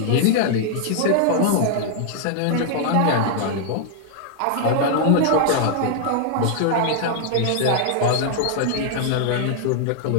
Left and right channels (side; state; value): both; different; correlation 0.00